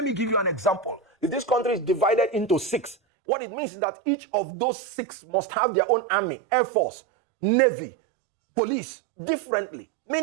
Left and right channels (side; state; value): left; drops out; at 3.0 s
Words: me give you an example. If this country is divided into 6, what it means is that each of those 6 must have their own army, air force, navy, police, differently.